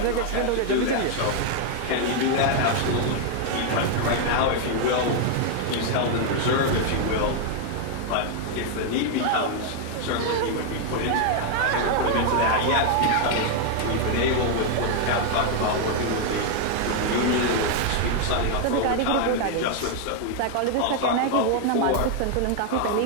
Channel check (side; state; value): both; different; correlation 0.00